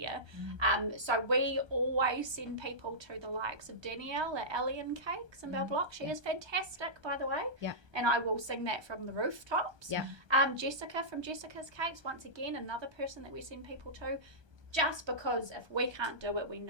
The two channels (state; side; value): late; left; 1.2 ms